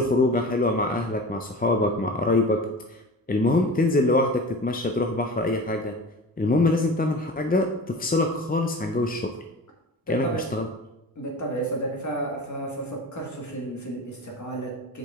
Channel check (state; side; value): normal; both; correlation 0.35